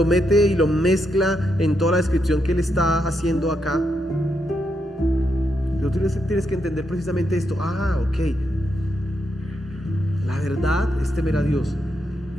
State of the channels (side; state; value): both; normal; correlation 0.81